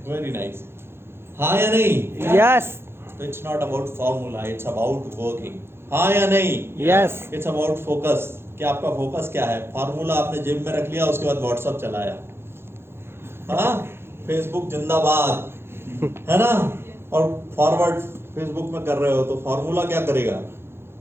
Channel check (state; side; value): late; left; 0.12 ms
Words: वेरी नाइस, हाँ या नहीं? यस। तो it's not about formula, it's about working, हाँ या नहीं? यस। इट्स अबाउट फोकस, कि आपका फोकस क्या है। फार्मूला आपने जेब में रख लिया, उसके बाद व्हाट्सएप चलाया, हाँ, फेसबुक जिंदाबाद, है ना, और फॉरवर्ड फेसबुक में कर रहे हो, तो फार्मूला क्या करेगा?